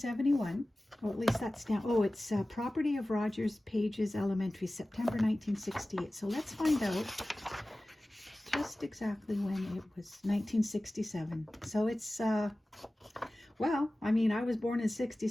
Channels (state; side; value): normal; both; correlation 0.97